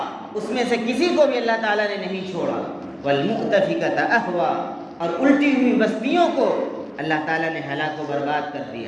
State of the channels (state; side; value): identical; both; correlation 1.00